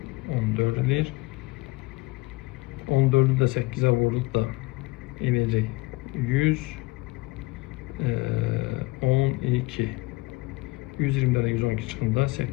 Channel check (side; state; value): right; quieter; 22.9 dB